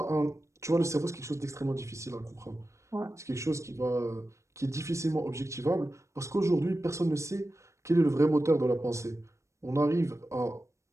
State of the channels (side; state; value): left; late; 0.14 ms